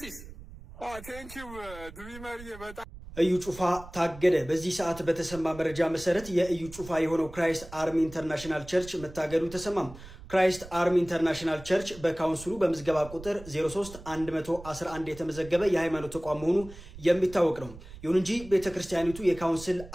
ቴንኪው ድሪመር በጣም እዩ ጩፋ ታገደ። በዚህ ሰዓት በተሰማ መረጃ መሰረት የእዩ ጩፋ የሆነው ክራይስት አርሚ ኢንተርናሽናል ቸርች መታገዱ ተሰማም። ክራይስት አርሚ ኢንተርናሽናል ቸርች በካውንስሉ በምዝገባ ቁጥር 03111 የተመዘገበ የሃይማኖት ተቋም መሆኑ የሚታወቅ ነው። ይሁን እንጂ ቤተክርስቲያኒቱ የካውንስል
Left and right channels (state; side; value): noise; right; rumble, 16 dB below the sound